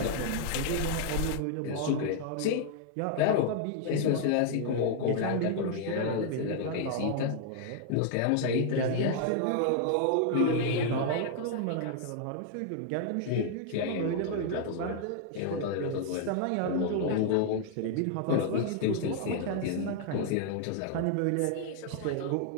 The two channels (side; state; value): both; different; correlation 0.00